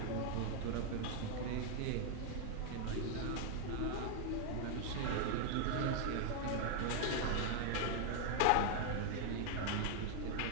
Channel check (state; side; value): different; both; correlation 0.00